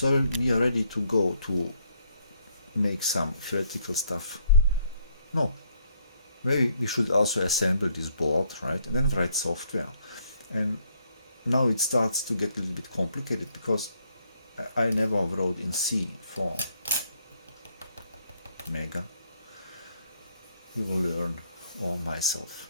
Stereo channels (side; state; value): both; inverted; correlation -0.69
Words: we are ready to go to make some theoretical stuff. No, maybe we should also assemble this board, right, and then write software. And now it starts to get a little bit complicated because I never wrote in C for Mega. We will learn all myself.